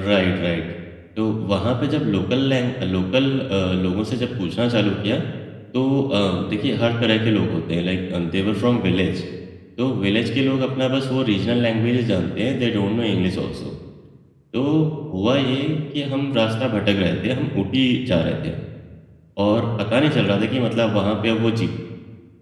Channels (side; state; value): both; identical; correlation 1.00